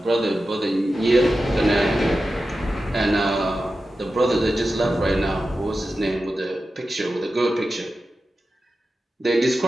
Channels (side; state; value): both; normal; correlation 0.92